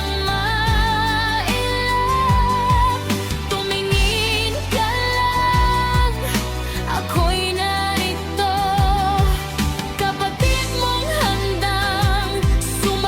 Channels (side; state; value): both; identical; correlation 1.00